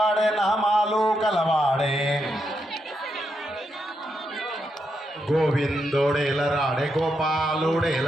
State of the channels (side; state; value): both; normal; correlation 0.82